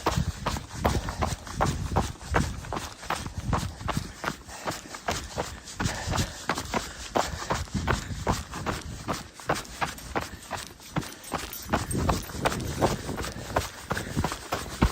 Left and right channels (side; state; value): both; identical; correlation 1.00